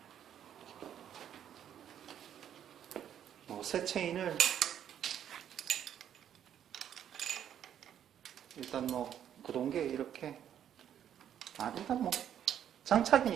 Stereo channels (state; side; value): quieter; left; 9.8 dB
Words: 새 체인을 일단 구동계 이렇게 일단